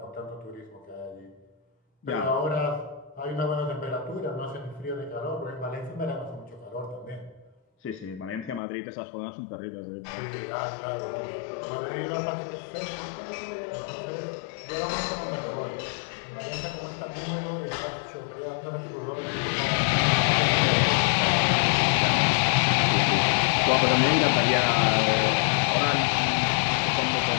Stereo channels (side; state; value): right; drops out; at 8.6 s